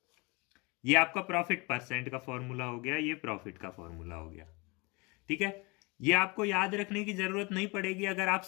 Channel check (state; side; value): quieter; right; 26.1 dB